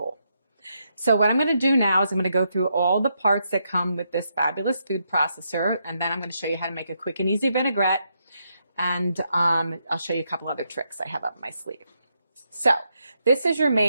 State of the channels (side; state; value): both; inverted; correlation -0.80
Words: So what I'm going to do now is I'm going to go through all the parts that come with this fabulous food processor, and then I'm going to show you how to make a quick and easy vinaigrette, and I'll show you a couple other tricks I have up my sleeve. So this is your